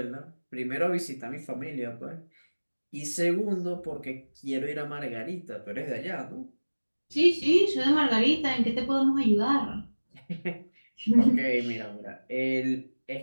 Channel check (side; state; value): both; inverted; correlation -1.00